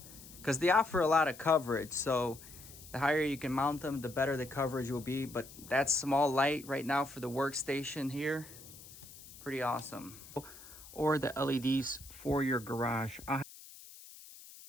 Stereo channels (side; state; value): left; noise; hiss, 18 dB below the sound